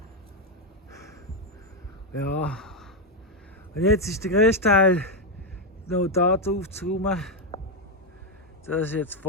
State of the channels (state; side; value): normal; both; correlation 0.03